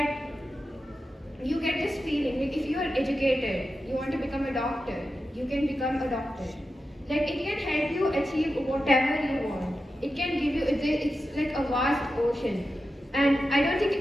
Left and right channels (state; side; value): normal; both; correlation 0.91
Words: you get this feeling like if you are educated, you want to become a doctor, you can become a doctor. Like it can help you achieve whatever you want. It can give you, it's like a vast ocean. And I don't